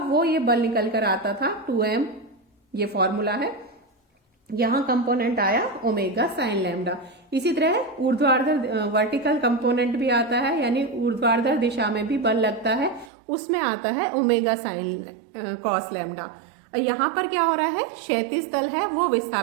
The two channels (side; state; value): left; drops out; at 13.1 s